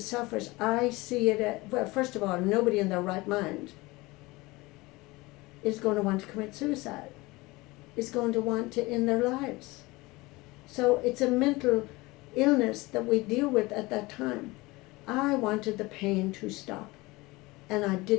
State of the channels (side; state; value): right; quieter; 22.1 dB